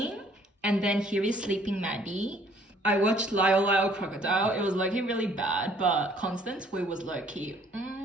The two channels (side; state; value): both; normal; correlation 0.60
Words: and then here is Sleeping Maddie. I watched Lyle Lyle Crocodile. It was low-key really bad, but Constance, we was low-key.